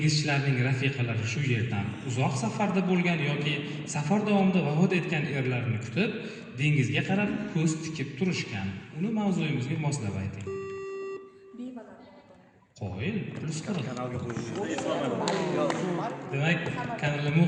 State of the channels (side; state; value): both; identical; correlation 1.00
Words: rafiqalari shu yerdan uzoq safarda bo'lgan yoki safar davomida vafot etgan erlarni kutib, dengizga qarab ko'z tikib turishgan. Uni mavzuyimizga moslab ayting. Qo'yil, plus 40. Kanalga qo'ying. Demak, kanalga